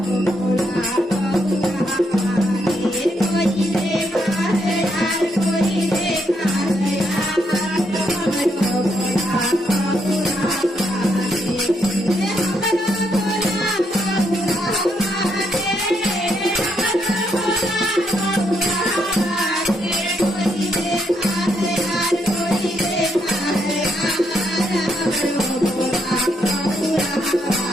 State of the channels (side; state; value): both; normal; correlation 0.77